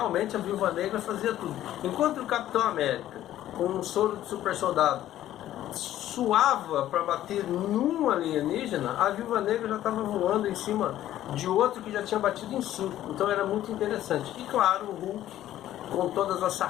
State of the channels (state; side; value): quieter; right; 12.9 dB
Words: a Viúva Negra fazia tudo. Enquanto o Capitão América, com um soro de super soldado, suava para bater num alienígena, a Viúva Negra já estava voando em cima de outro que já tinha batido em 5. Então era muito interessante. E claro, o Hulk, com todas as